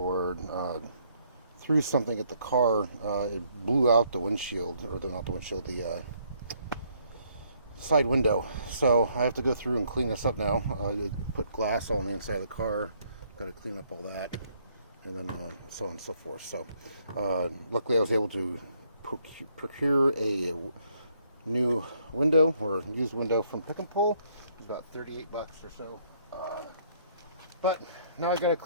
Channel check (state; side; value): inverted; both; correlation -0.68